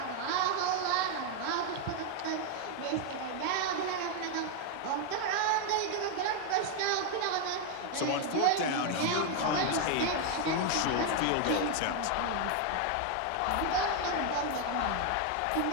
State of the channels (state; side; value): different; both; correlation 0.00